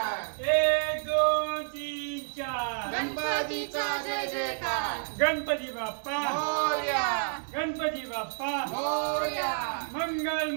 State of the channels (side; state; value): left; silent; 58 dB below the other